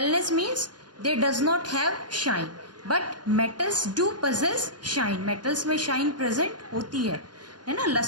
means they does not have shine but metals do possess shine. Metals में शाइन प्रेजेंट होती है ना,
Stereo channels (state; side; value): late; left; 0.70 ms